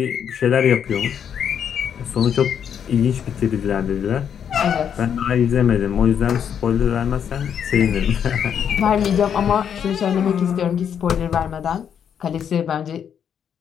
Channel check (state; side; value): quieter; right; 8.3 dB